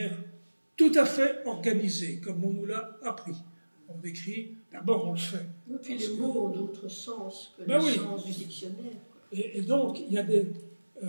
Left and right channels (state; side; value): inverted; both; correlation -1.00